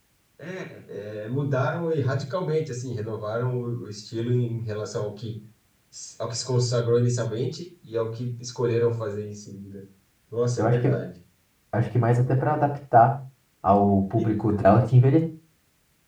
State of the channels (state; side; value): identical; both; correlation 1.00